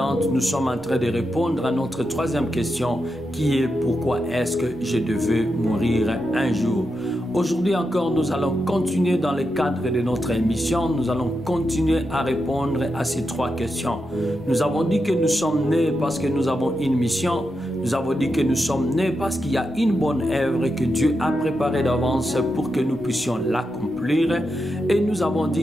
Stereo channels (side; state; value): left; noise; rumble, 25 dB below the sound